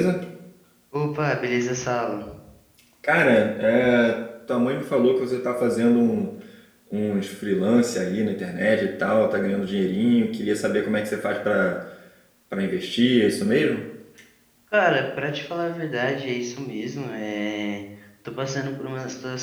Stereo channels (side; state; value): both; identical; correlation 1.00